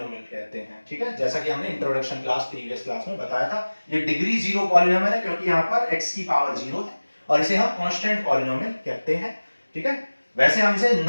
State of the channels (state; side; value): inverted; both; correlation -1.00